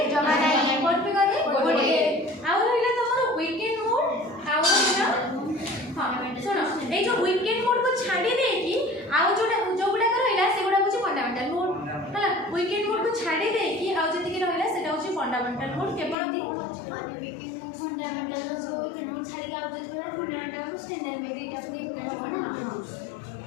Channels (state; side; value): drops out; right; at 16.2 s